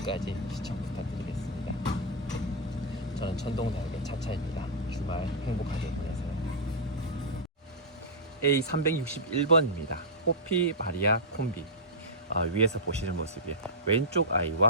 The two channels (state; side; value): normal; both; correlation -0.09